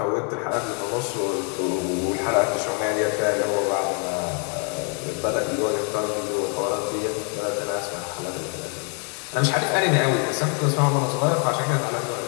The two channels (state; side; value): quieter; right; 38.4 dB